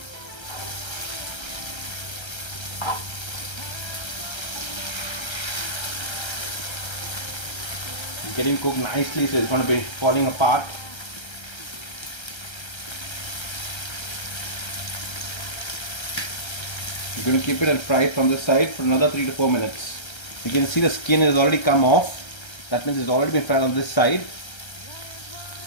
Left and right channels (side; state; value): right; late; 1.3 ms